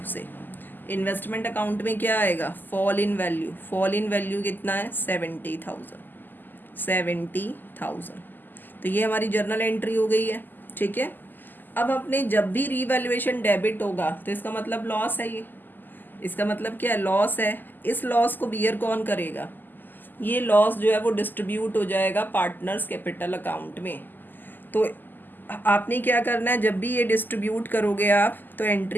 से। इन्वेस्टमेंट अकाउंट में क्या आएगा, fall in value, fall in value कितना है, 70,000, 70,000। तो ये हमारी जर्नल एंट्री हो गई है, ठीक है। अब अपने जब भी रीवैल्यूएशन डेबिट होगा तो इसका मतलब लॉस है, ये इसका मतलब क्या है, लॉस है। इस लॉस को बियर कौन करेगा, ये लॉस जो है वो डिस्ट्रीब्यूट हो जाएगा पार्टनर्स कैपिटल अकाउंट में। तो आपने क्या करना है, जब भी ये डिस्ट्रीब्यूट करोगे आप तो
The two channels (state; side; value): late; right; 0.089 ms